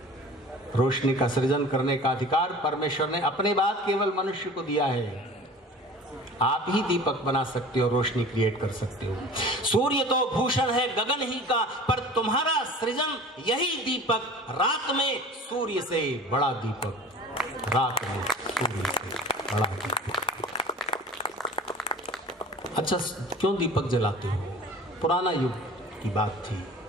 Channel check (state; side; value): normal; both; correlation 0.41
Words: रोशनी का सृजन करने का अधिकार परमेश्वर ने अपने बाद केवल मनुष्य को दिया है। आप ही दीपक बना सकते हो, रोशनी क्रिएट कर सकते हो। सूर्य तो भूषण है गगन ही का, पर तुम्हारा सृजन यही दीपक। रात में सूर्य से बड़ा दीपक, रात में सूर्य से बड़ा दीपक। अच्छा, क्यों दीपक जलाते हो? पुराना युग की बात थी,